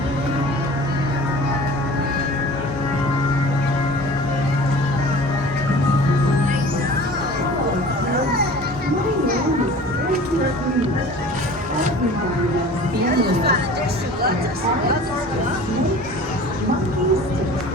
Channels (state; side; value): normal; both; correlation 0.43